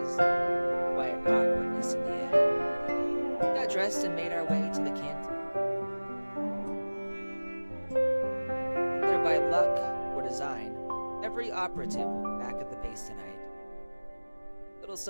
quiet awkwardness in the air. We got dressed and made our way to the canteen. Whether by luck or design, every operative will be back at the base tonight. Little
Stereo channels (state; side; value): inverted; both; correlation -1.00